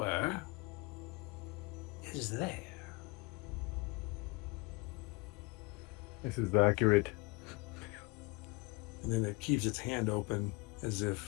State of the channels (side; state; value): right; quieter; 26.1 dB